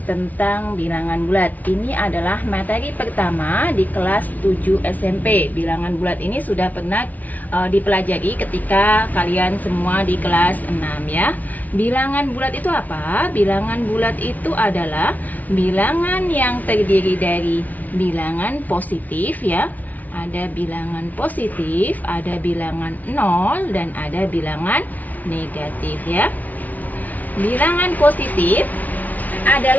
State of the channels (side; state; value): right; late; 0.077 ms